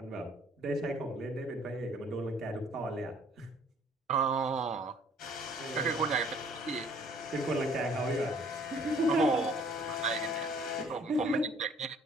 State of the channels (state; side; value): normal; both; correlation 0.58